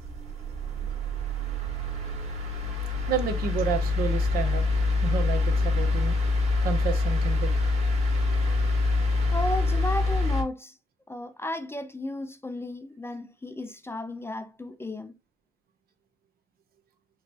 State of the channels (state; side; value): normal; both; correlation 0.77